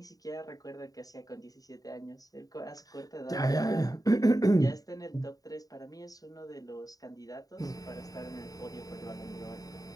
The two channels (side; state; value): right; late; 0.18 ms